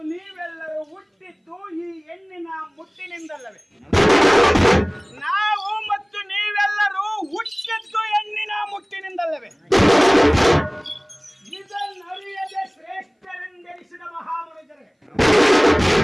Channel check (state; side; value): identical; both; correlation 1.00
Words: ನೀವೆಲ್ಲರೂ ಹುಟ್ಟಿದ್ದು ಈ ಹೆಣ್ಣಿನ ಮುಟ್ಟಿನಿಂದಲ್ಲವೇ? ನಾವು ಮತ್ತು ನೀವೆಲ್ಲರೂ ಹುಟ್ಟಿದ್ದು ಹೆಣ್ಣಿನ ಮುಟ್ಟಿನಿಂದಲ್ಲವೇ? ಇದನ್ನರಿಯದೆ ಶ್ರೇಷ್ಠರೆಂದೆನಿಸಿದ ಮಹಾಮನುಜರೇ,